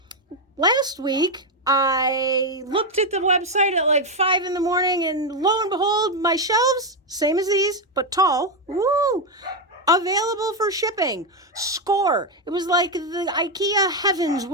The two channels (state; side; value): normal; both; correlation 0.05